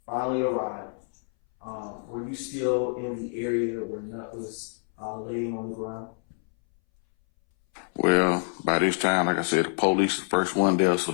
finally arrived, were you still in the area where Nut was laying on the ground? Well, by this time, like I said, the police the first one there, so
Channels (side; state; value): right; silent; 60 dB below the other